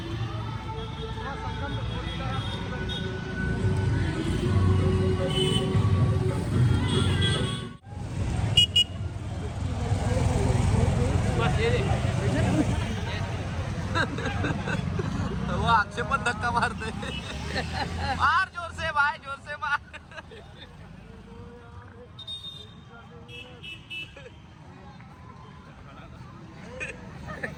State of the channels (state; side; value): identical; both; correlation 1.00